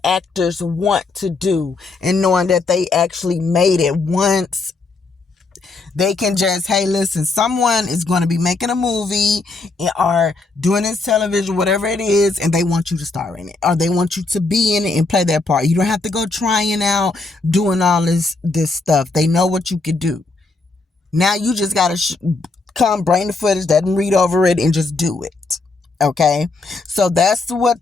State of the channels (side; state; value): right; quieter; 3.6 dB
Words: actors want to do. And knowing that they actually made it once, they can just, hey, listen, someone is going to be making a movie or doing this television, whatever it is, and they want you to star in it, or they want you to be in it and play that part. You don't have to go trying out, doing all this stuff. They know what you could do. Now you just got to come bring the footage, doesn't read over it, and just do it. Okay? So that's what